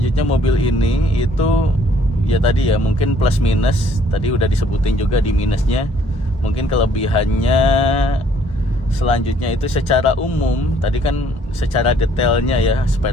mobil ini itu ya tadi ya, mungkin plus minus tadi udah disebutin juga di minusnya. Mungkin kelebihannya selanjutnya itu secara umum, tadi kan secara detailnya ya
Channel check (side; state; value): both; normal; correlation 0.62